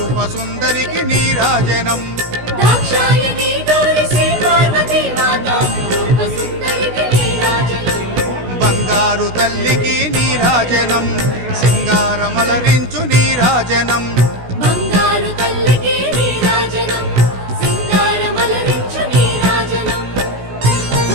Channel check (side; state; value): left; late; 16 ms